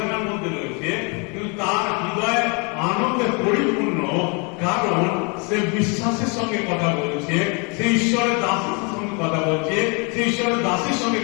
মধ্যে রয়েছে, কিন্তু তার হৃদয় আনন্দে পরিপূর্ণ, কারণ সে বিশ্বাসের সঙ্গে কথা বলছে, সে ঈশ্বরের দাসের সঙ্গে কথা বলছে, সে ঈশ্বরের দাসের সঙ্গে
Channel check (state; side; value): quieter; right; 32.8 dB